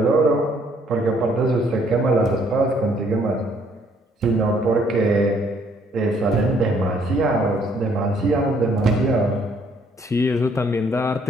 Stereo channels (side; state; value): both; normal; correlation 0.65